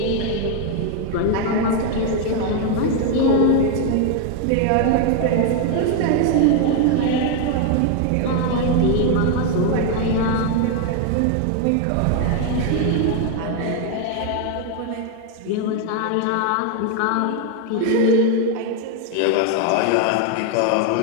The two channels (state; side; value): different; both; correlation 0.01